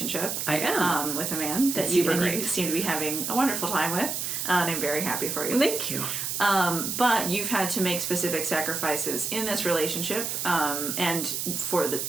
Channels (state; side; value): noise; right; hiss, 2 dB below the sound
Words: I am. With a man that Super you great. seem to be having a wonderful time with, and I'm very happy for you. Thank you. But you've had to make specific sacrifices in this relationship, and for